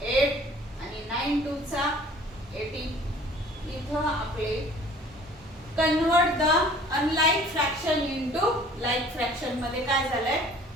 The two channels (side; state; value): both; normal; correlation 0.51